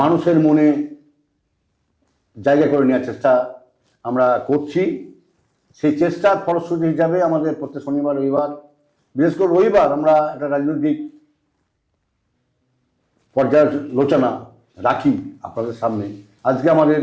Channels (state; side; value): identical; both; correlation 1.00